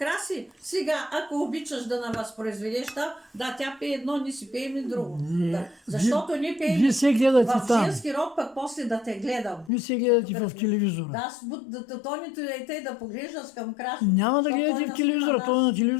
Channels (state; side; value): drops out; right; at 9.7 s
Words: Сега, ако обичаш да навъзпроизведеш, да, тя пее едно, ние си пеем и друго. Не, Да, защото ние пеем Вие се гледате в там. женски род, пък после да те гледам. Вие се гледате в телевизора. Да, Тонито и те да поглеждаш към Краси. Няма да защото гледате той в телевизора, наснима той на